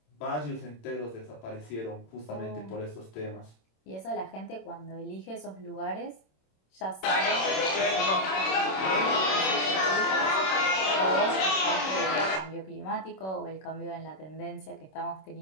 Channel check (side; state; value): right; late; 26 ms